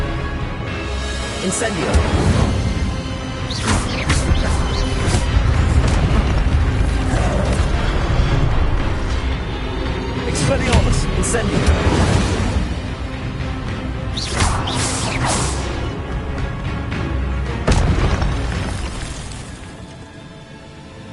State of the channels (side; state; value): both; identical; correlation 1.00